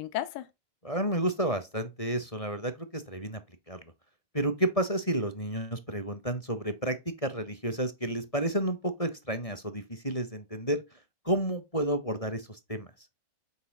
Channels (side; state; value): right; late; 1.6 ms